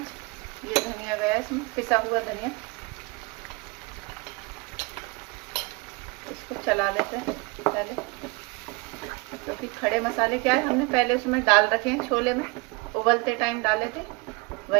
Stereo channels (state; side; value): quieter; left; 27.0 dB